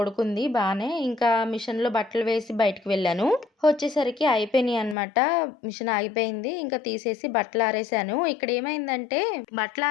బాగానే. ఇంకా మిషన్లో బట్టలు వేసి బయటకు వెళ్ళాను. వచ్చేసరికి అయిపోయినాయి అనమాట. మిషన్ ఆగిపోయింది. ఇంకా తీసేసి బట్టలు ఆరేసాను. ఇక్కడ ఏమైందంటే బట్టలు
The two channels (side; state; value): right; drops out; at 5.0 s